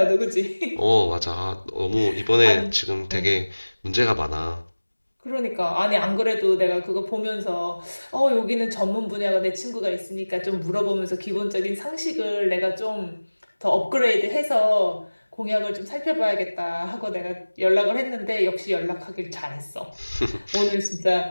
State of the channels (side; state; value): both; inverted; correlation -1.00